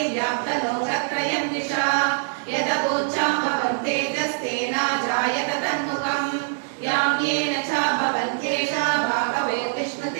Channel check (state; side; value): silent; left; digital silence